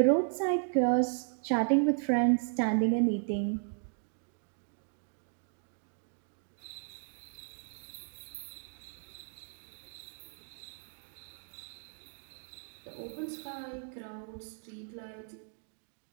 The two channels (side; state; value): left; silent; 54 dB below the other